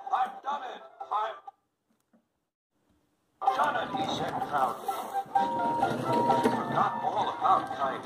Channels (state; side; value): identical; both; correlation 1.00